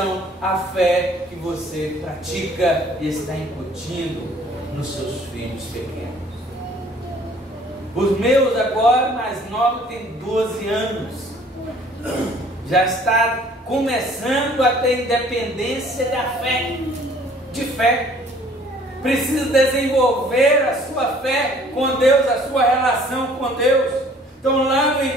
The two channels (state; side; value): normal; both; correlation 0.56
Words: à fé que você pratica e está incutindo nos seus filhos pequenos. Os meus agora, mais novos, tem 12 anos. Já está começando a ter independência da fé, de fé. Precisa desenvolver a sua fé com Deus, a sua relação com Deus. Então lá no